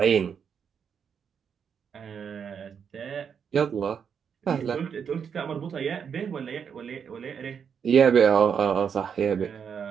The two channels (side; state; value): left; quieter; 7.1 dB